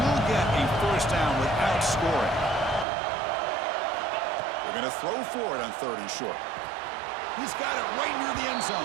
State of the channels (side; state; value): left; drops out; at 2.9 s